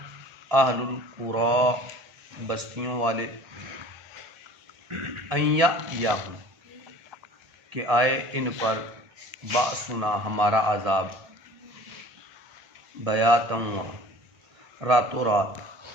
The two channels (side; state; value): left; late; 1.7 ms